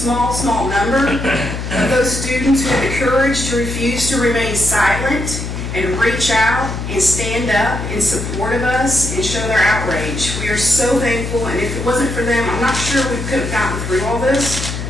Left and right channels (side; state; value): left; noise; hum, 6 dB below the sound